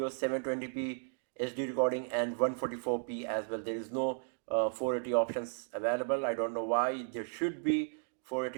720p HD recording, and 144p as well. There is no 480 options available. I don't know why. There should be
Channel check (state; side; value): silent; left; digital silence